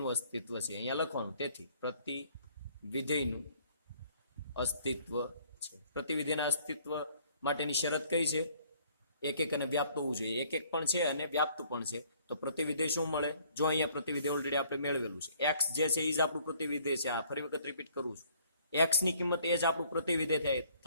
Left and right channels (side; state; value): both; inverted; correlation -0.61